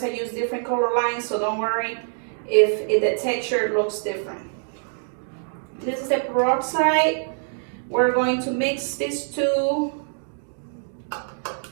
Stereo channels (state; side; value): silent; left; digital silence